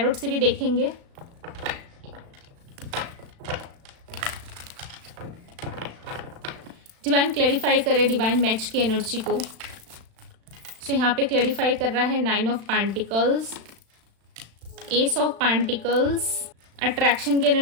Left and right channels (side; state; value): left; late; 36 ms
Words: से भी देखेंगे। डिवाइन क्लैरिफाई करे डिवाइन मैच की एनर्जी को। सो यहाँ पे क्लैरिफाई कर रहा है 9 of pentacles, ace of pentacles. Attraction की